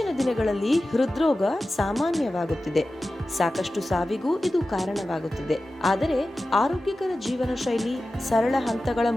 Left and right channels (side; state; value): both; normal; correlation 0.94